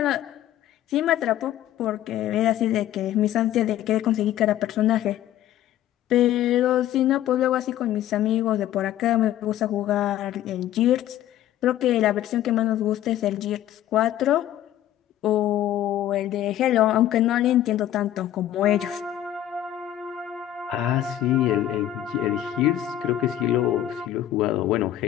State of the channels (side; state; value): right; quieter; 12.5 dB